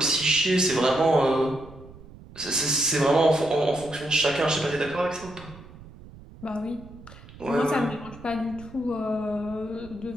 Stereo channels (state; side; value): noise; right; rumble, 19 dB below the sound